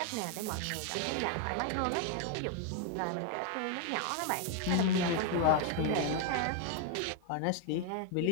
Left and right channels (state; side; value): different; both; correlation 0.00